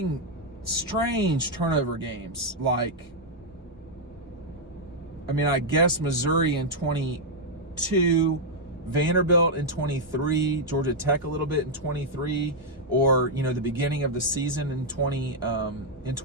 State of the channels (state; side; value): normal; both; correlation -0.03